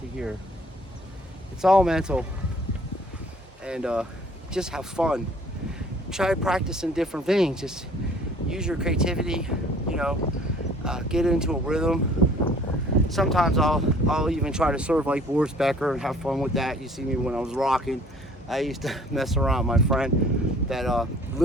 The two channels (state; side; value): normal; both; correlation 0.54